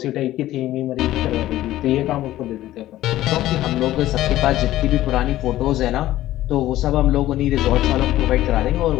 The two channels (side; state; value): right; quieter; 14.7 dB